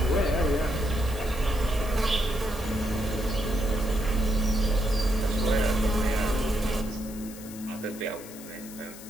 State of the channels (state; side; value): noise; left; hiss, 16 dB below the sound